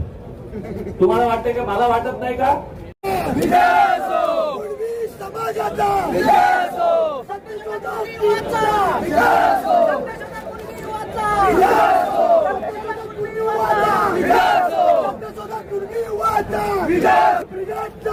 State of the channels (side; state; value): both; identical; correlation 1.00